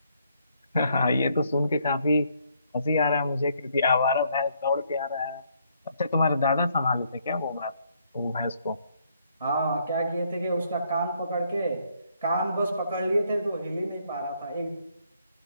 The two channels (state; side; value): inverted; both; correlation -0.71